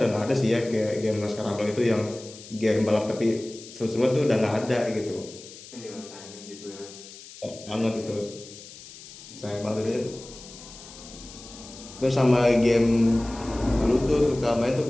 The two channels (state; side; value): noise; left; hiss, 17 dB below the sound